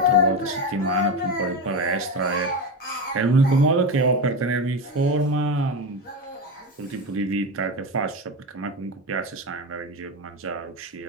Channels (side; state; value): both; normal; correlation 0.18